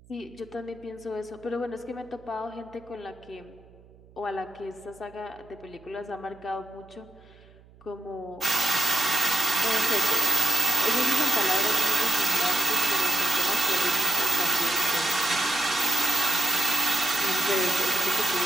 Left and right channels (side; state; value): right; noise; hum, 26 dB below the sound